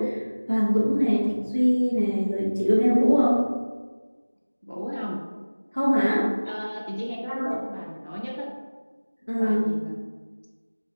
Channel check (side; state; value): both; inverted; correlation -1.00